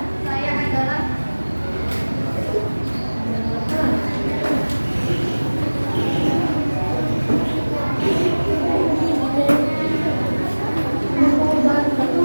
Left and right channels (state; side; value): inverted; both; correlation -1.00